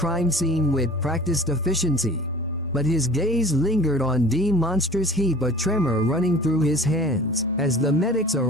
scene with practiced efficiency, but his gaze lingered on monstrous heap, a tremor running through his hands. As the medics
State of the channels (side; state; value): both; normal; correlation 0.45